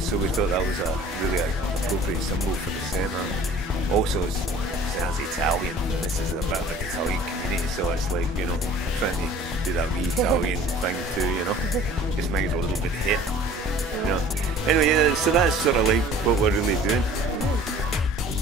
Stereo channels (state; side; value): normal; both; correlation 0.48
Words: we thought that was a really appropriate symbol for the centre. Also, it sounds Italian, and this is a bit of an Italian community, so it's like, you know, trying to do that wee Italian thing too, you know, just make it a little bit hip, you know. Anyway, yeah, so that's sort of like what we're really doing.